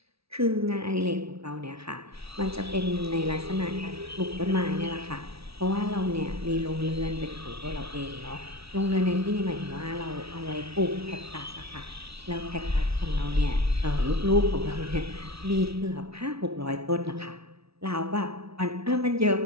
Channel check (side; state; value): left; late; 0.77 ms